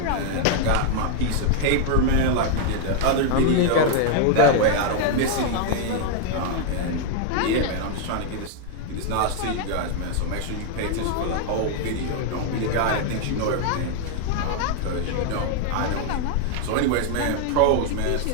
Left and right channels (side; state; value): both; different; correlation 0.00